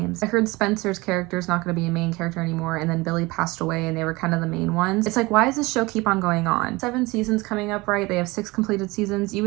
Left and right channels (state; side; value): quieter; left; 22.9 dB